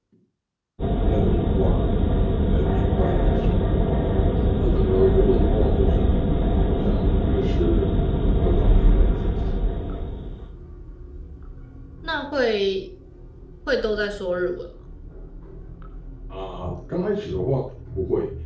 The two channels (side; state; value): both; identical; correlation 1.00